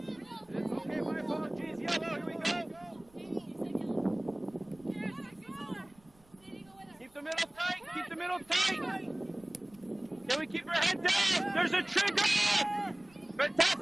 Okay, my apologies. Yellow, here we go. Keep the middle tight. Keep the middle tight. Can we keep our head down? There's a trigger.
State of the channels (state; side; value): noise; right; rumble, 29 dB below the sound